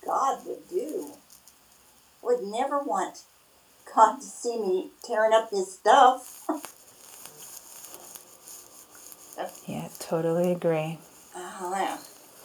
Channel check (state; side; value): identical; both; correlation 1.00